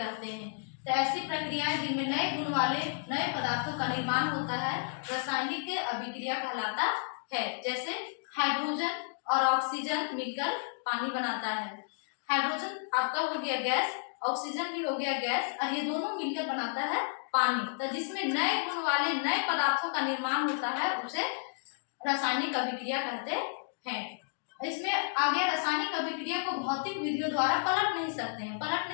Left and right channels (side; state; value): right; silent; digital silence